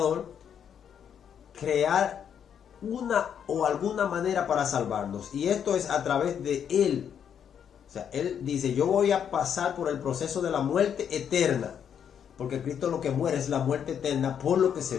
crear una o alguna manera para salvarnos. Y esto es a través de Él. O sea, Él dice, yo voy a pasar por el proceso de la muerte eterna. Porque Cristo lo que muere es la muerte eterna por lo que se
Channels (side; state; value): right; quieter; 8.3 dB